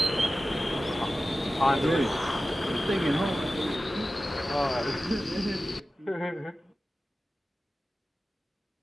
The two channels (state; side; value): normal; both; correlation 0.95